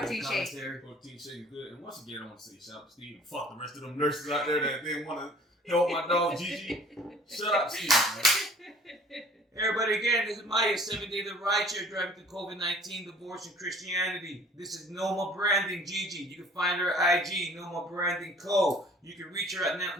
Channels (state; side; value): normal; both; correlation 0.51